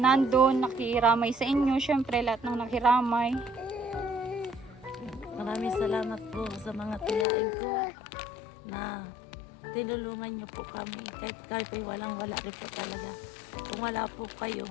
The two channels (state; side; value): drops out; right; at 7.2 s